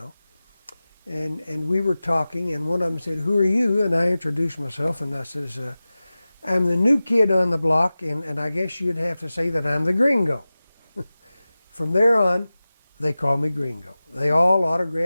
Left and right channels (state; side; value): inverted; both; correlation -0.96